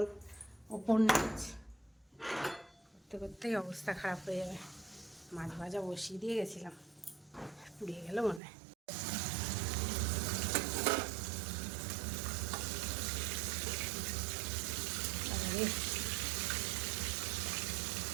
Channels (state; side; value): drops out; left; at 8.4 s